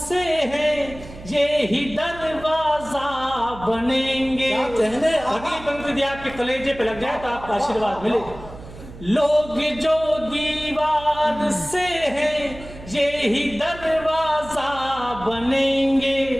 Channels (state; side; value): noise; right; hum, 16 dB below the sound